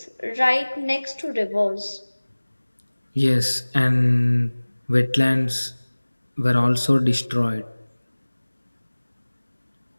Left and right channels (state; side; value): inverted; both; correlation -1.00